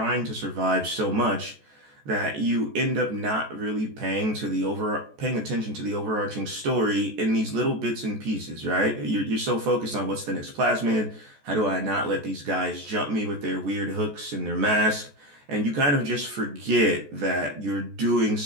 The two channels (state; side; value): late; left; 14 ms